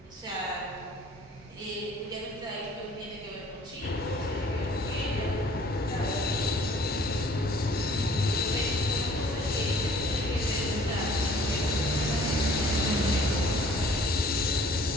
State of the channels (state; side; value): normal; both; correlation 0.53